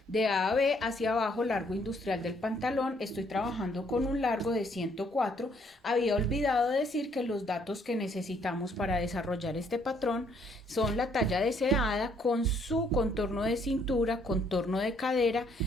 De A a B hacia abajo, largo industrial del pantalón, estoy trabajando con un largo de 104. Había olvidado decir que los datos que necesitamos para desarrollar este patrón son la talla deseada con su contorno de cintura, contorno de cadera,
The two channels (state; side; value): normal; both; correlation 0.67